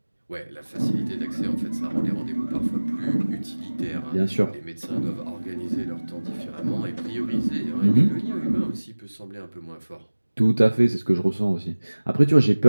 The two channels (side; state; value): both; inverted; correlation -1.00